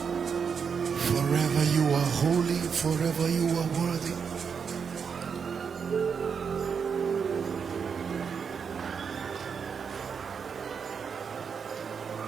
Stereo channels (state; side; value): quieter; left; 6.4 dB